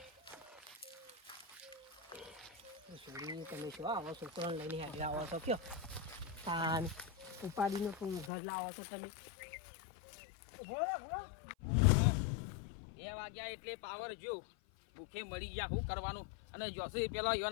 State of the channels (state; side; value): drops out; right; at 8.3 s